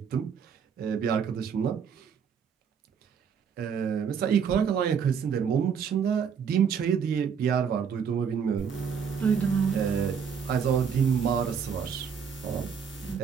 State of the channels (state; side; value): quieter; left; 7.0 dB